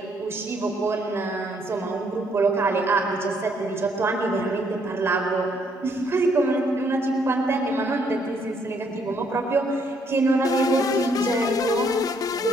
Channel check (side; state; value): both; normal; correlation 0.69